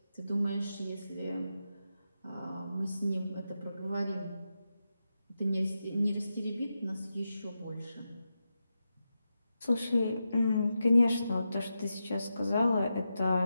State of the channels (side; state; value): both; inverted; correlation -0.89